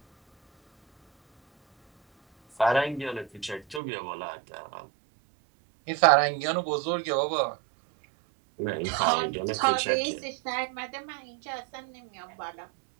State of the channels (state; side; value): drops out; left; at 3.8 s